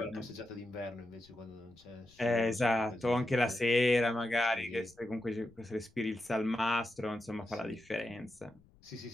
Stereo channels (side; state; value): left; noise; rumble, 29 dB below the sound